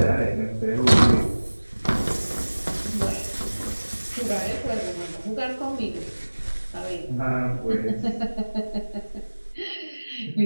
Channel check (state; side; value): inverted; both; correlation -1.00